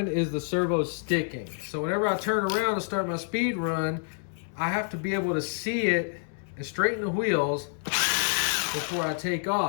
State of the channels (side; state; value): right; silent; 59 dB below the other